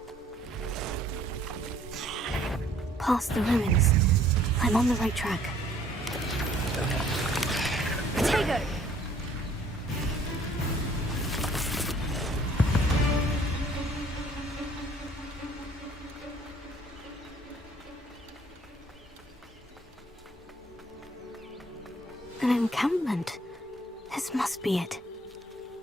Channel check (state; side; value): normal; both; correlation 0.58